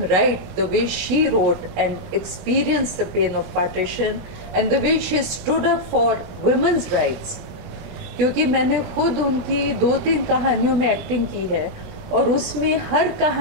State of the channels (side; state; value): left; late; 20 ms